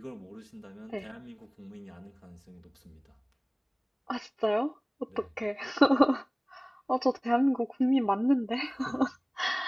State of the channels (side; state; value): both; identical; correlation 1.00